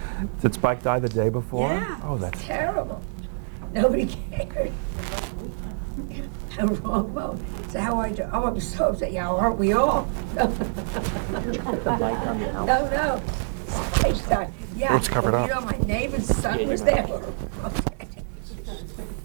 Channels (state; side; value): silent; left; 61 dB below the other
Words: Did Spike die the day before? Yeah, Oh, it's that's terrible. Nobody cared. A wrong moment. So how are you? Oh, I'm so upset. Yeah, aren't we all? No. No. Spike died. Yeah. Let's cover Well, do it you up. know my neighbor's son was there? Okay.